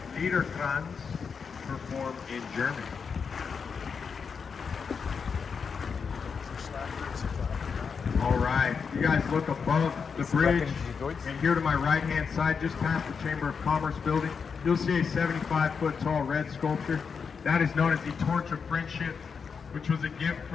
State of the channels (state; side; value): quieter; right; 5.9 dB